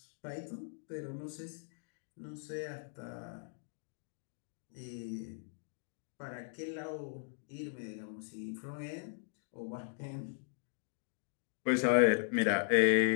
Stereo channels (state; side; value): silent; right; digital silence